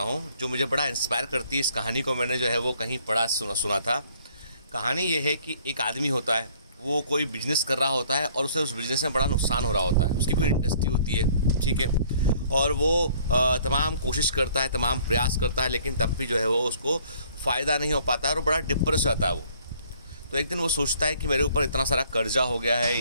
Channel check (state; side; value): inverted; both; correlation -0.60